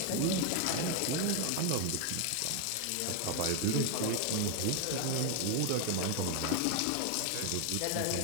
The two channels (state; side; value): different; both; correlation 0.01